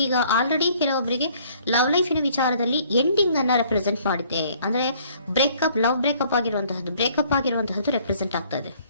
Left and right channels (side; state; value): both; inverted; correlation -0.59